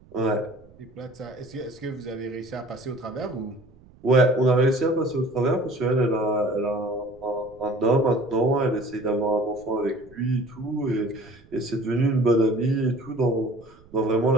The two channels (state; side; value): noise; right; rumble, 25 dB below the sound